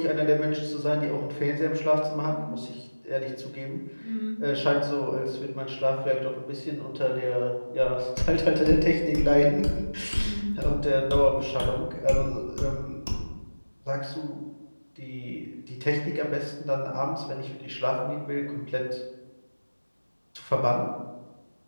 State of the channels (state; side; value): inverted; both; correlation -1.00